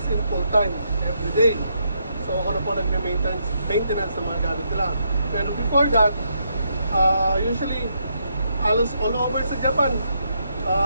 in full time, every day. So, ako na po nagme-maintenance ng mga gamit nila. Pero before that, usually, halos all over sa Japan,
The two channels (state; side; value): inverted; both; correlation -0.78